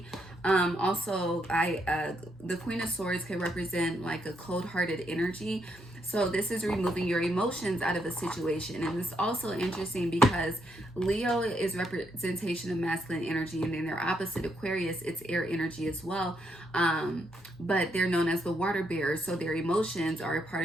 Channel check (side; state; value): both; normal; correlation 0.77